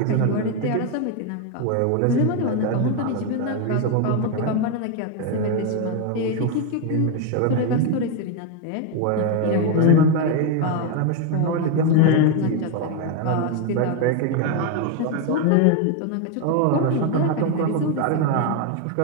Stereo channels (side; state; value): both; different; correlation 0.01